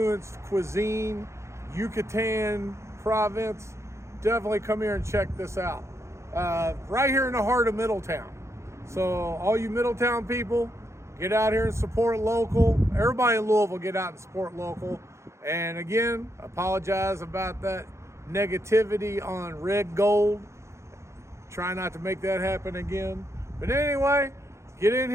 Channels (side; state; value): left; late; 0.14 ms